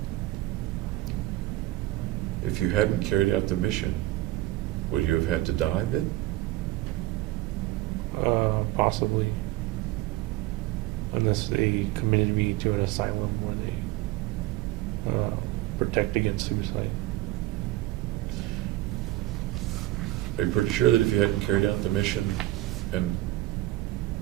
If you hadn't carried out the mission, would you have had to die then? Possibly. Unless they committed me to an asylum where they protect against suicide. Are you pretty sure that if you hadn't carried out the mission and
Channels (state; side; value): quieter; left; 17.0 dB